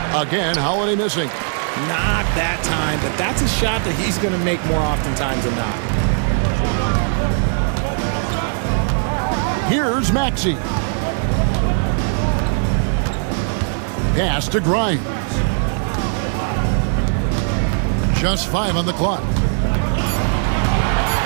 Again, Holiday missing. Not that time, but that's a shot that he's going to make more oftentimes than not. Here's Maxey. Pass to Grimes. Just 5 on the clock.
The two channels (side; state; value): left; silent; 55 dB below the other